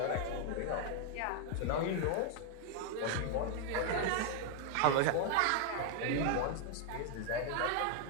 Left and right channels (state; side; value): different; both; correlation 0.00